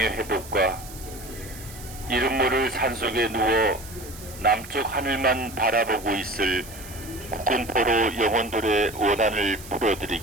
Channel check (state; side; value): noise; right; hiss, 16 dB below the sound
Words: 이름 모를 산속에 누워 남쪽 하늘만 바라보고 있을 국군포로 영혼들의 원한을